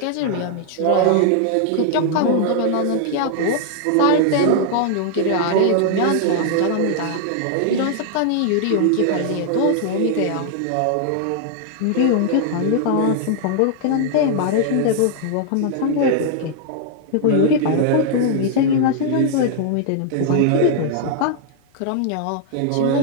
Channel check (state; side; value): different; both; correlation 0.00